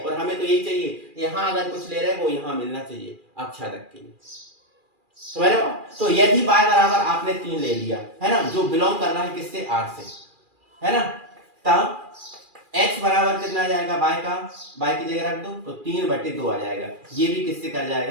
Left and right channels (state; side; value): late; left; 2.4 ms